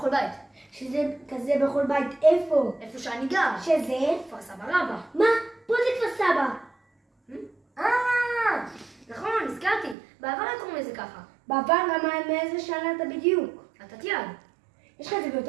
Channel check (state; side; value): drops out; left; at 10.0 s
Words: בית. שזה כזה בכל בית, איפה? איפה שאני גר. שזה? כפר סבא רבא. מה? פה זה כפר סבא. נכון, הזכרתי. בעבר היה קוראים לזה ככה. בעבר למה מאיזה שנה אתה בדיוק? אתה תיעד. יש לך את זה